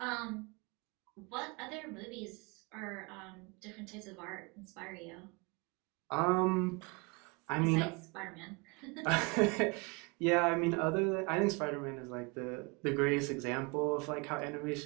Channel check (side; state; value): left; quieter; 29.5 dB